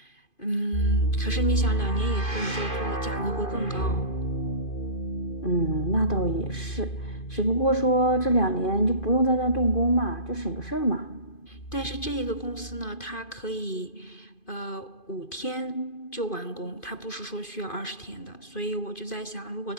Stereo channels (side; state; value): right; late; 2.5 ms